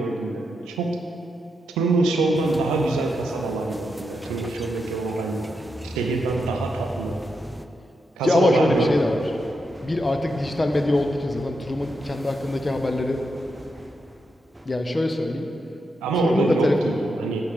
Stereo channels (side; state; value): both; normal; correlation 0.84